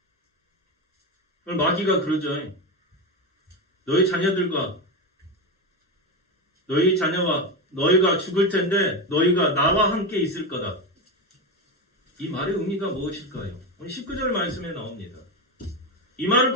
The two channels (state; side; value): normal; both; correlation 0.16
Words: 마귀가 그러죠. 너희 자녀들과 너희 자녀와 너희가 죽을 텐데 너희가 나와 함께 있을 거다. 이 말의 의미가 무엇일까요? 오늘 19절 말씀에 나옵니다. 이 말을